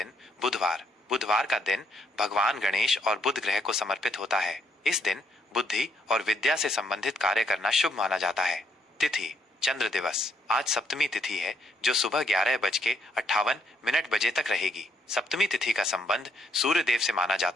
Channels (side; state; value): both; normal; correlation 0.72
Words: बुधवार। बुधवार का दिन भगवान गणेश और बुध ग्रह को समर्पित होता है। इस दिन बुद्धि और विद्या से संबंधित कार्य करना शुभ माना जाता है। तिथि चंद्र दिवस। आज सप्तमी तिथि है जो सुबह 11:58 बजे तक रहेगी। सप्तमी तिथि का संबंध सूर्य देव से माना